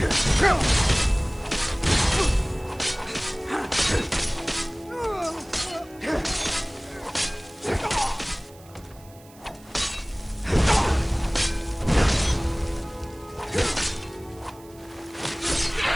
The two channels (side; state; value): right; noise; hiss, 25 dB below the sound